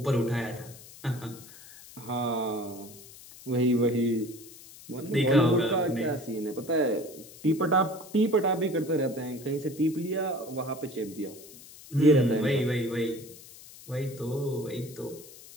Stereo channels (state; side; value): noise; left; hiss, 18 dB below the sound